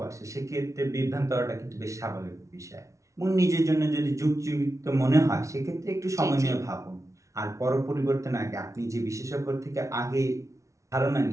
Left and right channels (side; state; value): left; late; 0.15 ms